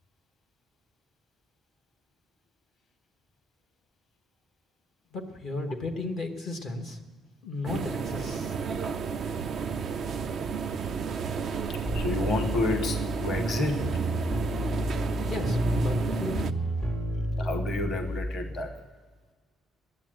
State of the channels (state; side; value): normal; both; correlation 0.72